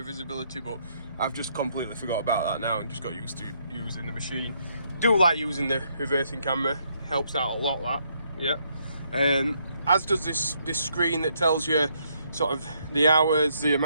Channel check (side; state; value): both; inverted; correlation -0.72